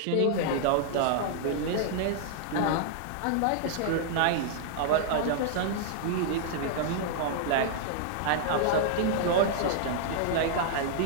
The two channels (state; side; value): different; both; correlation -0.01